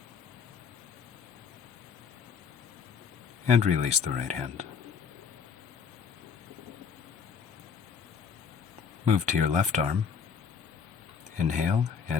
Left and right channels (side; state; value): right; quieter; 6.5 dB